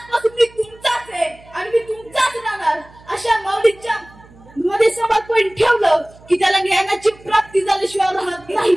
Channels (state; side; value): noise; right; hum, 25 dB below the sound